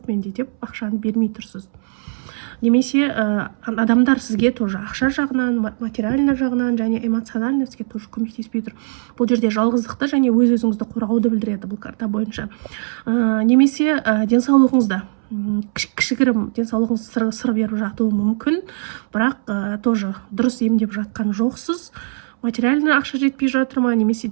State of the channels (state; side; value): silent; left; 66 dB below the other